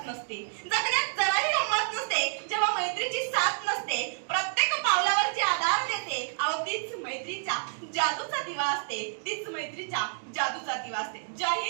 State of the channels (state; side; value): silent; left; digital silence